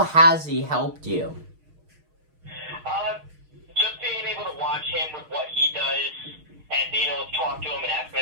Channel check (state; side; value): late; left; 6.5 ms